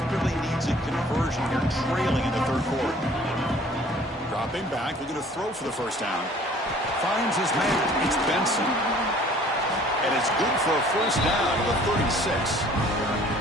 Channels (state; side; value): normal; both; correlation 0.53